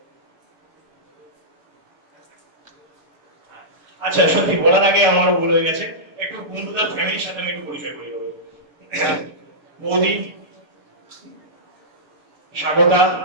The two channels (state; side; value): late; left; 6.9 ms